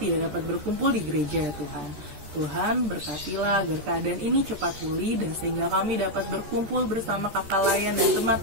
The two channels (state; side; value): late; left; 14 ms